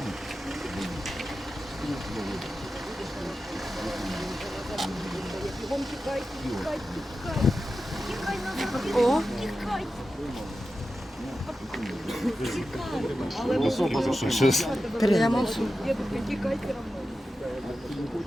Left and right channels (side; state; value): both; normal; correlation 0.92